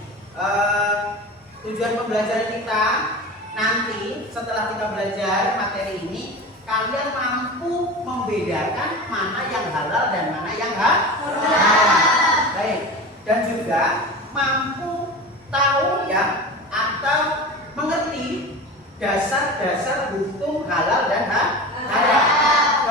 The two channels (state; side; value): normal; both; correlation 0.30